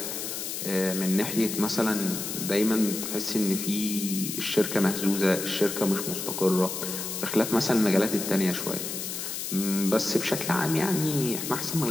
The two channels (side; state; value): left; noise; hiss, 5 dB below the sound